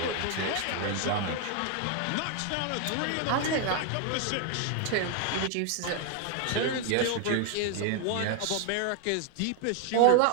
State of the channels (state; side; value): different; both; correlation 0.00